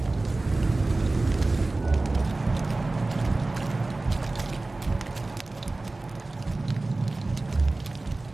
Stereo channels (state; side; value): quieter; left; 3.1 dB